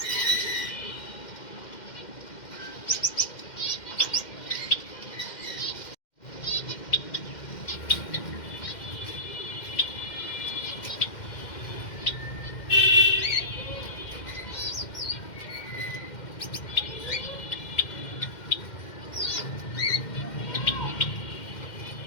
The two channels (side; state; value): right; late; 2.1 ms